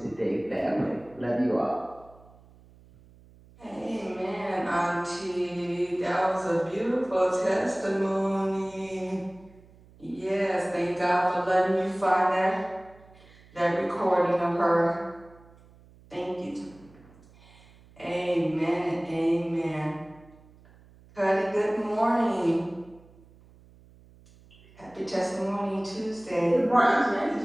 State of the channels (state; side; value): noise; right; hum, 25 dB below the sound